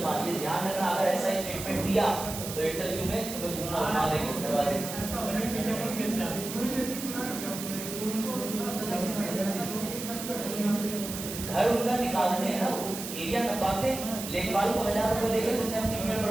ये ध्यान रखना। अगर ऐसा स्टेटमेंट दिया तो इंटरव्यू में तुम्हें घुमा देंगे दरवाजे। घर उनका निकालते हैं ना, वो एरिया नपाते हैं, लेखपाल को 1000 रुपए देकर तुमने अपनी मेड़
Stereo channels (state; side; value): noise; right; hiss, 8 dB below the sound